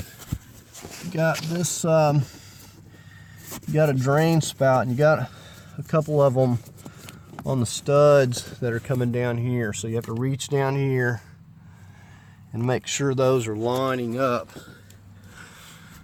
this you got a drain spout, and you got a couple of them on the studs that are coming down here, so you have to reach down here and make sure those are lining up,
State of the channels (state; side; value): identical; both; correlation 1.00